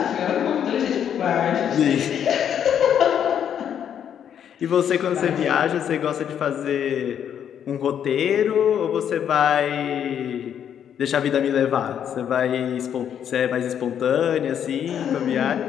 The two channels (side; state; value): right; quieter; 9.0 dB